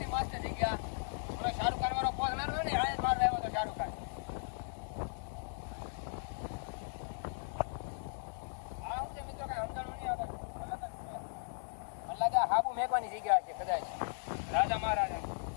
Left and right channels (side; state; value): right; silent; digital silence